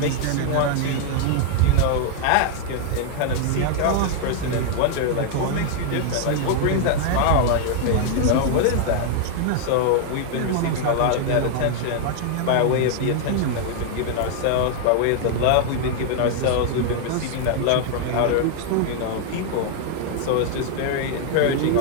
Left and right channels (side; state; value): both; different; correlation 0.00